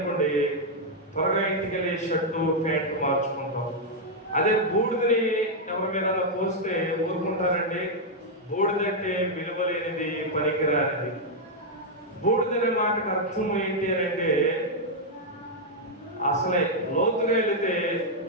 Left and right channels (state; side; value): normal; both; correlation -0.03